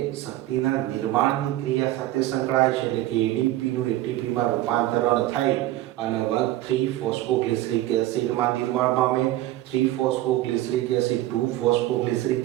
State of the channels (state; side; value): quieter; left; 15.4 dB